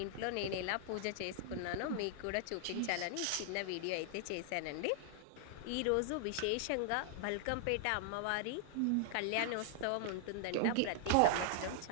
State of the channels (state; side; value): different; both; correlation -0.01